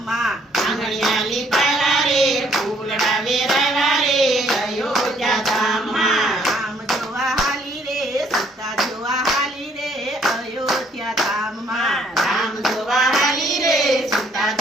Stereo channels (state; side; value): normal; both; correlation 0.64